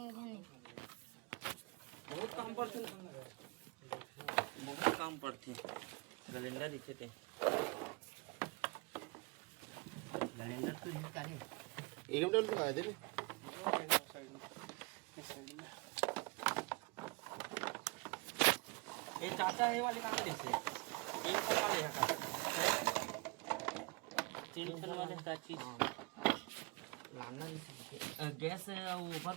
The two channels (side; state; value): left; quieter; 27.9 dB